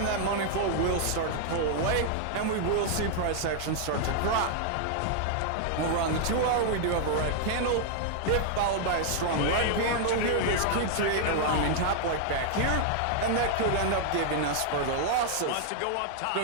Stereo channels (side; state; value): both; different; correlation 0.00